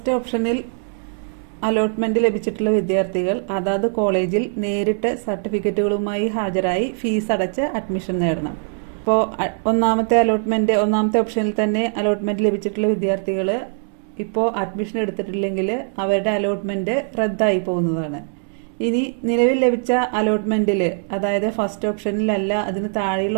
ഓപ്ഷനിൽ അലോട്ട്മെൻറ്റ് ലഭിച്ചിട്ടുള്ള വിദ്യാർത്ഥികൾ അതാത് കോളേജിൽ നേരിട്ട് സർട്ടിഫിക്കറ്റുകളുമായി ഹാജരായി ഫീസ് അടച്ച് അഡ്മിഷൻ നേടണം. ഇപ്പോൾ ഒന്നാമത്തെ ഓപ്ഷനിൽ തന്നെ അലോട്ട്മെൻറ്റ് ലഭിച്ചിട്ടുള്ള വിദ്യാർത്ഥികൾ ഇപ്പോൾ അഡ്മിഷൻ എടുത്തിട്ടില്ലെങ്കിൽ അവരുടെ അലോട്ട്മെൻറ്റ് റദ്ദായി പോകുന്നതാണ്. ഇനി നിലവിൽ ലഭിച്ച അലോട്ട്മെൻറ്റിൽ, അതായത് ഫസ്റ്റ് ഓപ്ഷനിലല്ല അതിന് താഴെയുള്ള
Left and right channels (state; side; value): silent; left; 61 dB below the other